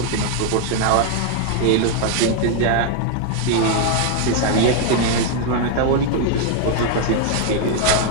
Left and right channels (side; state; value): both; different; correlation 0.00